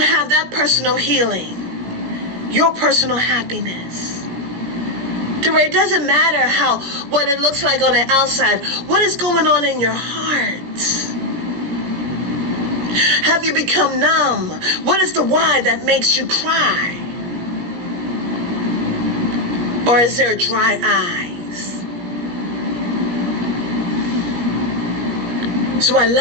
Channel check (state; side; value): late; left; 17 ms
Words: that personal healing, your personal happiness? To where it doesn't matter what it looks like on the outside, what is going on in your heart? Have you become numb? What is the why that makes you cry? Or is there dry eyes? So I